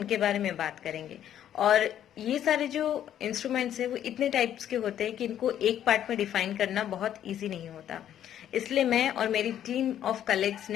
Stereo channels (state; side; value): quieter; right; 10.6 dB